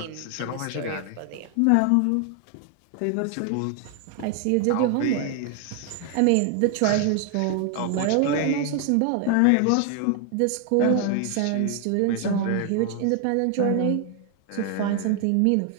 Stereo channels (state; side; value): different; both; correlation 0.00